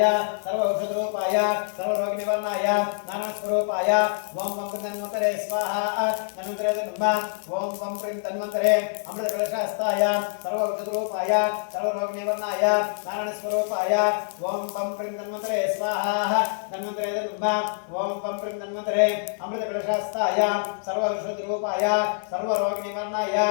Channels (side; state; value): right; silent; 61 dB below the other